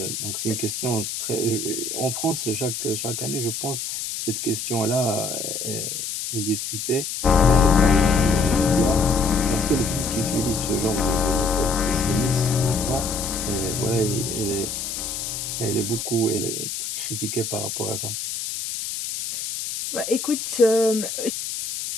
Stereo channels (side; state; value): left; noise; hiss, 5 dB below the sound